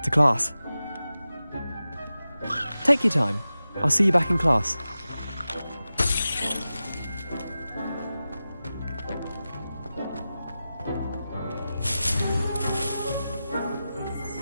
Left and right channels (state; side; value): inverted; both; correlation -0.94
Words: to class. Take your time. I'll see you back in class.